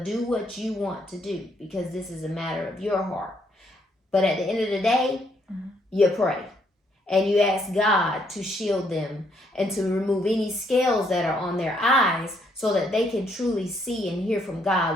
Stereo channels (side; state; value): both; normal; correlation 0.71